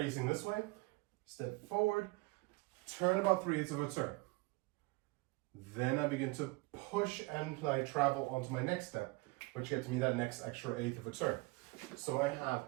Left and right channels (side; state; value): left; quieter; 24.5 dB